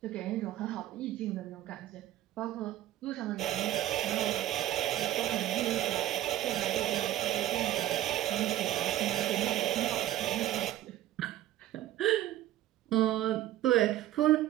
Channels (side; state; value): left; quieter; 13.5 dB